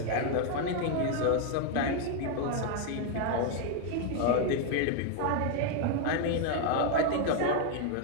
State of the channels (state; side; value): different; both; correlation 0.00